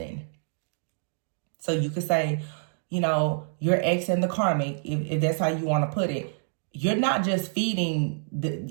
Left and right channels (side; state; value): left; silent; digital silence